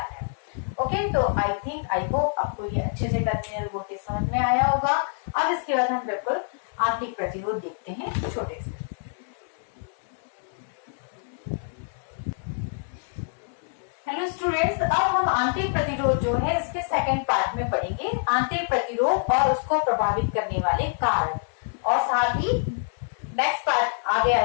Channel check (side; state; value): right; silent; 61 dB below the other